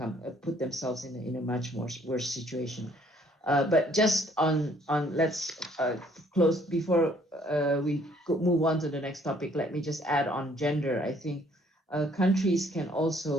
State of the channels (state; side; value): normal; both; correlation 0.62